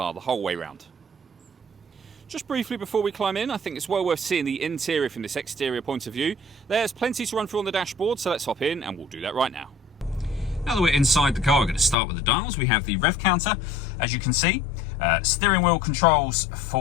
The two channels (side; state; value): right; drops out; at 12.0 s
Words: the whole way around. Just briefly before we climb in, I think it's well worth seeing the interior from this exterior point of view. There's plenty to run through on the dashboard, so let's hop in and we'll do that right now. Now that we're inside the car, we're going to start with the dials. We have the rev counter, as you can see, steering wheel controls